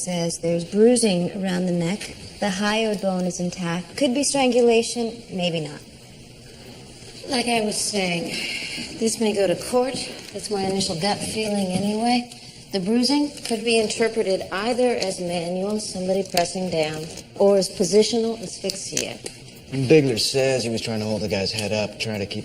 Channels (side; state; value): both; identical; correlation 1.00